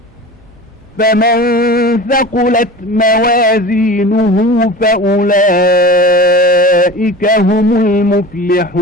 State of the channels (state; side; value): normal; both; correlation 0.35